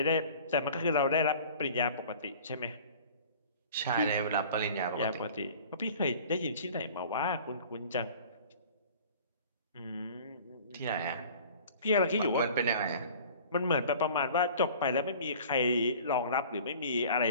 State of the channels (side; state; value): both; inverted; correlation -0.46